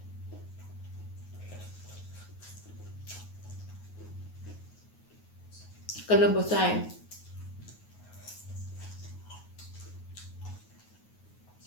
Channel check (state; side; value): late; right; 9.4 ms